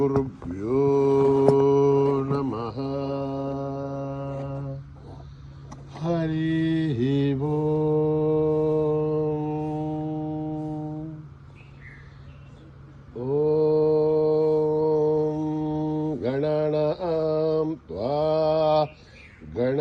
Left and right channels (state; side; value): identical; both; correlation 1.00